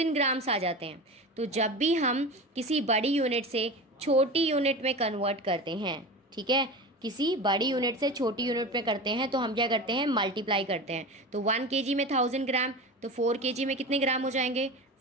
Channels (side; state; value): both; normal; correlation 0.29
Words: ग्राम्स आ जाते हैं। तो जब भी हम किसी बड़ी यूनिट से छोटी यूनिट में कन्वर्ट करते हैं, ठीक है, किसी बड़ी यूनिट से छोटी यूनिट में करते हैं, तो हम क्या करते हैं, मल्टीप्लाई करते हैं। तो 1 kg में 1000 ग्राम, तो 4 kg में कितने ग्राम हो जाएंगे,